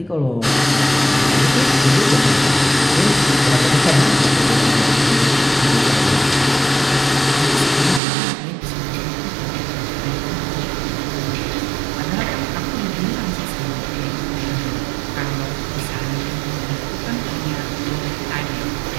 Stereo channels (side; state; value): left; drops out; at 8.0 s